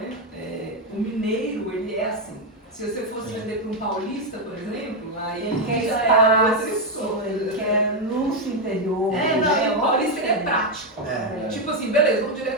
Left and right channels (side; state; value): both; normal; correlation 0.04